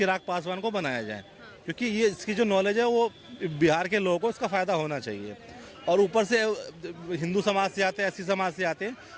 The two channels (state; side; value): identical; both; correlation 1.00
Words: पासवान को बनाया जाए, क्योंकि ये इसकी जो नॉलेज है वो बिहार के लोगों को इसका फ़ायदा होना चाहिए। और ऊपर से हिंदू समाज से आते हैं, एससी समाज से आते हैं,